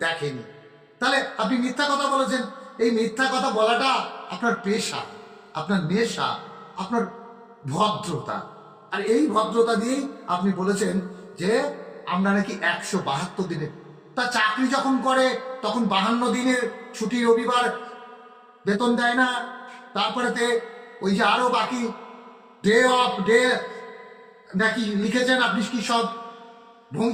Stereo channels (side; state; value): both; identical; correlation 1.00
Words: দেখেনি। তাহলে আপনি মিথ্যা কথা বলেছেন। এই মিথ্যা কথা বলাটা আপনার পেশা, আপনার নেশা, আপনার ভদ্রতা। আর এই ভদ্রতা দিয়েই আপনি বলেছেন যে আমরা নাকি 172 দিনে, তা চাকরি যখন করে তখন 52 দিনের ছুটি, রবিবার বেতন দেয় না। তারপরেতে ওই যে আরো বাকি ডে অফ ডে নাকি লিখেছেন আপনি, কি সব